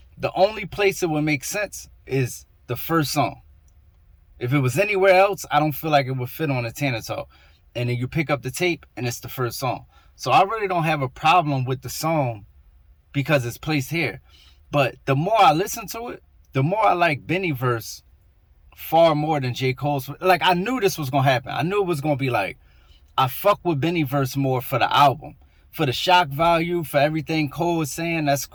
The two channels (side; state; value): both; identical; correlation 1.00